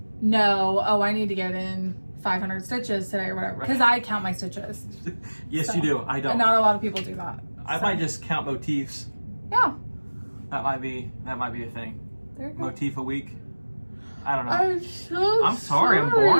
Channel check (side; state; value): both; inverted; correlation -1.00